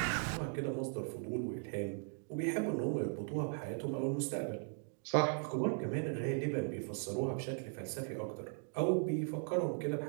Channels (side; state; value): left; silent; 52 dB below the other